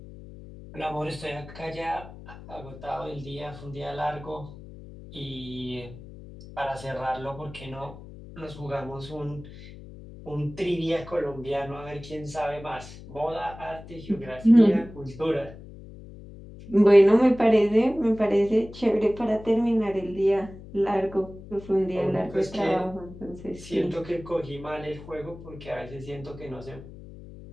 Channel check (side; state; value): left; noise; hum, 16 dB below the sound